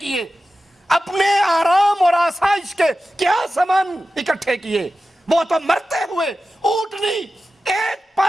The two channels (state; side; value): normal; both; correlation 0.94